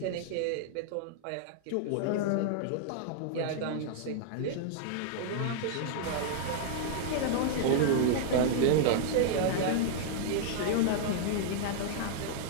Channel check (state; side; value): different; both; correlation -0.01